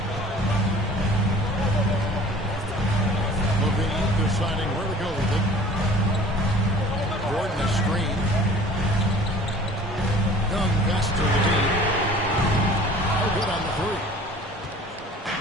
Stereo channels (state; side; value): normal; both; correlation 0.46